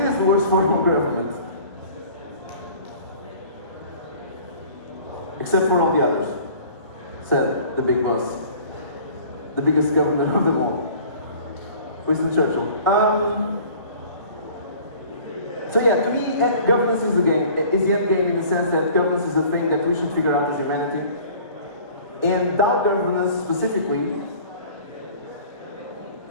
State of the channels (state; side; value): inverted; both; correlation -0.48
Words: the worst form of government. Except for all the others, said the big boss. The biggest government of them all. Winston Churchill. So yeah, to me, governance is the game. Is the end game in the sense that governance is a thing that we should figure out as humanity. And DAO governance specifically,